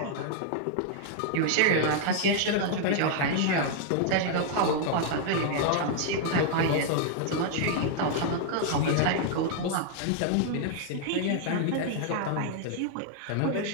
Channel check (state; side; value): different; both; correlation 0.00